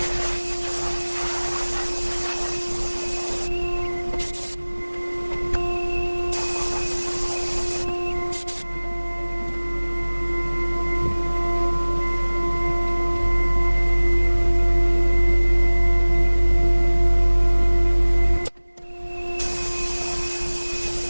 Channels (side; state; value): both; inverted; correlation -1.00